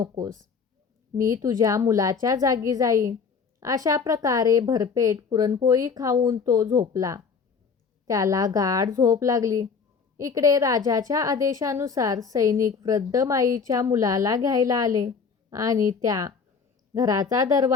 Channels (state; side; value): quieter; right; 5.6 dB